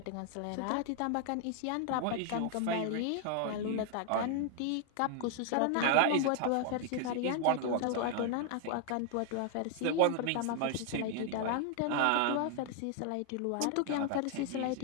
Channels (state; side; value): different; both; correlation 0.00